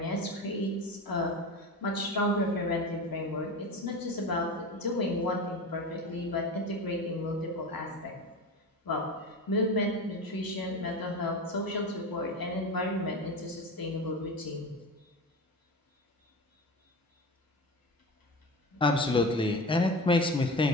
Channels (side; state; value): both; normal; correlation 0.28